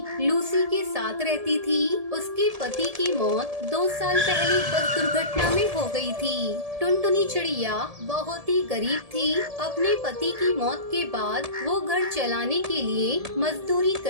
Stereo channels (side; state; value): left; late; 1.7 ms